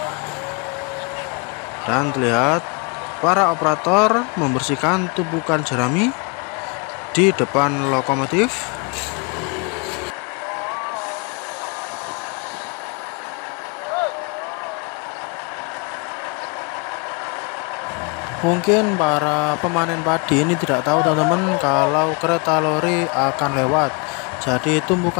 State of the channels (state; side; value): quieter; right; 32.4 dB